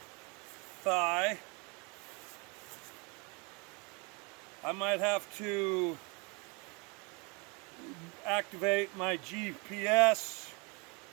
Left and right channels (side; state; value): left; quieter; 30.3 dB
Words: thigh, I might have to activate my GPS,